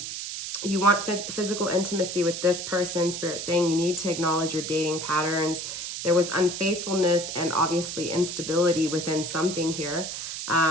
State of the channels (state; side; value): noise; right; hiss, 6 dB below the sound